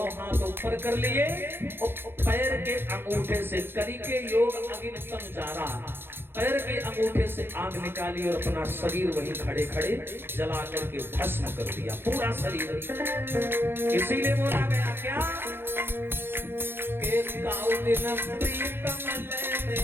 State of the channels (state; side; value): late; left; 0.10 ms